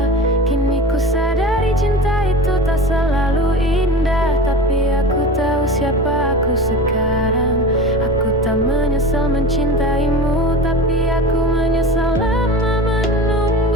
Kini ku sadari cinta itu tak selalu indah, tapi aku tahu siapa aku sekarang. Aku tak menyesal mencintaimu, tapi aku menyesal lama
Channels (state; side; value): normal; both; correlation 0.32